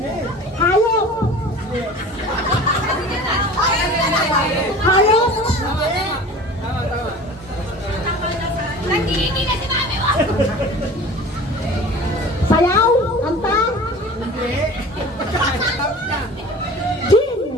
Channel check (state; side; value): normal; both; correlation 0.40